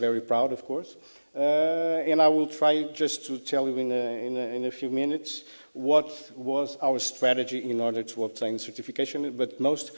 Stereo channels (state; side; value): inverted; both; correlation -1.00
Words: proud, of course. And I will try just to tell you in a few minutes what was our strategy in order to obtain certification, but most,